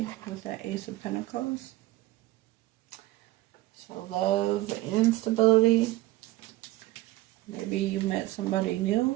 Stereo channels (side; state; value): left; quieter; 17.9 dB